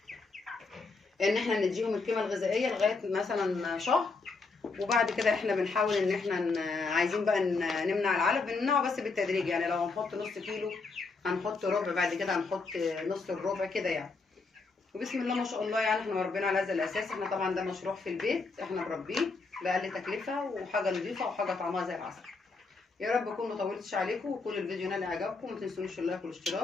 ان احنا نديهم القيمه الغذائيه لغايه مثلا شهر، وبعد كده احنا بنحاول ان احنا عايزين بقى نمنع العلف، بنمنعه بس بالتدريج، يعني لو هنحط نص كيلو هنحط ربع، بعد كده هنحط نص الربع كده يعني. وبسم الله ما شاء الله يعني احنا مربينا على هذا الاساس. احنا طبعا ده مشروع في البيت، احنا مربيه باقل تكلفه وحاجه نظيفه وحاجه طعمها زي العسل. يا رب اكون ما طولتش عليكم، وكل الفيديو نال اعجابكم، ما تنسونيش اللايك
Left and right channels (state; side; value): quieter; right; 4.1 dB